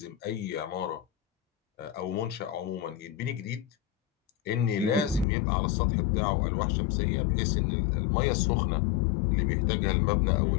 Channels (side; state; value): right; drops out; at 5.2 s